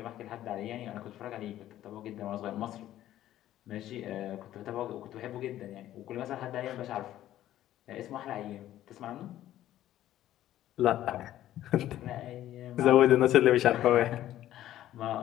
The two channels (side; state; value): right; quieter; 13.1 dB